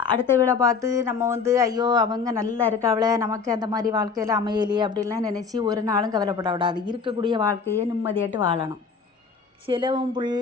அடுத்த வீடை பார்த்து நம்ம ஐயோ அவங்க நல்லா இருக்காவளே, நமக்கு அந்த மாதிரி வாழ்க்கையில் அமையலையே அப்படின்லாம் நினச்சி ஒரு நாளும் கவலைப்படக்கூடாது. இருக்கக்கூடிய வாழ்க்கையை நிம்மதியாட்டு வாழணும். சிலவும்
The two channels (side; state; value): right; quieter; 5.4 dB